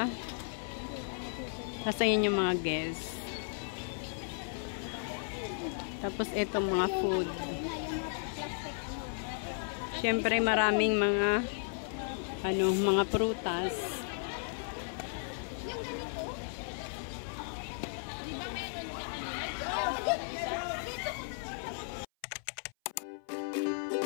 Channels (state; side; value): silent; right; 55 dB below the other